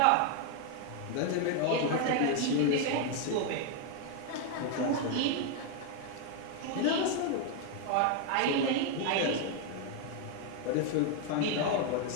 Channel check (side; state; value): both; different; correlation 0.01